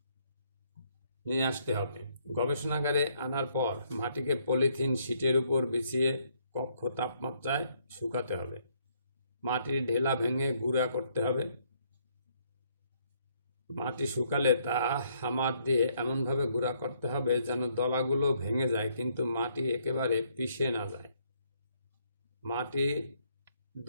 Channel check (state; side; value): inverted; both; correlation -0.69